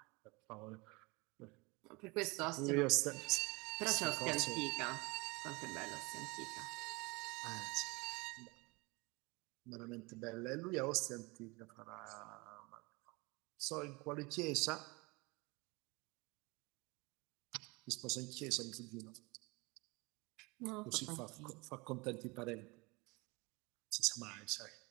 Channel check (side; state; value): left; quieter; 25.8 dB